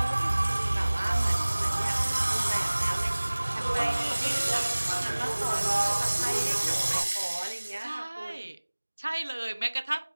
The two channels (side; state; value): both; inverted; correlation -1.00